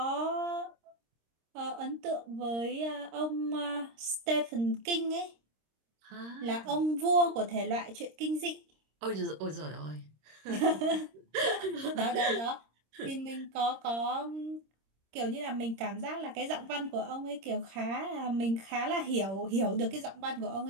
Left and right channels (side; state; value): left; late; 26 ms